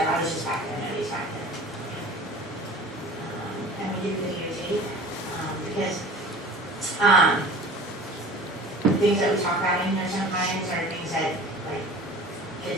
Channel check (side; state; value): both; normal; correlation 0.41